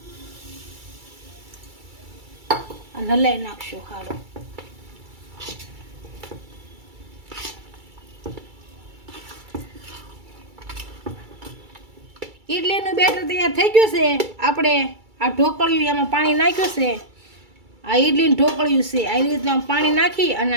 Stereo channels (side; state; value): left; late; 2.3 ms